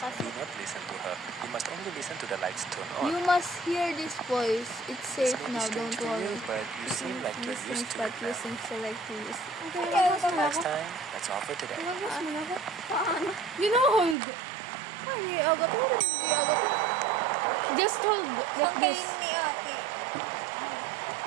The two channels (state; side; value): drops out; left; at 14.2 s